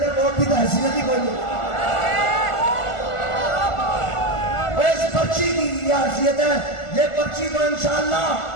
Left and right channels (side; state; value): right; late; 1.4 ms